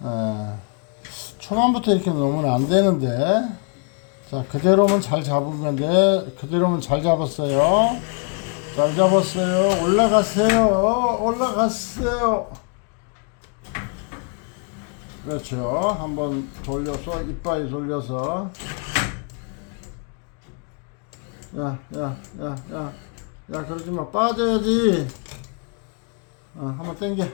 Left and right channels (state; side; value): quieter; right; 39.4 dB